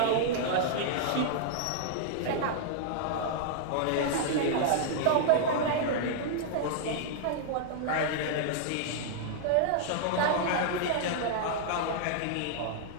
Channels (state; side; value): different; both; correlation -0.01